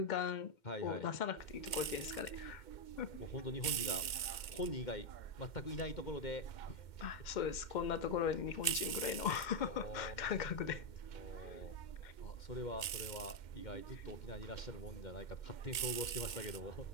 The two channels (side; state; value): right; late; 2.1 ms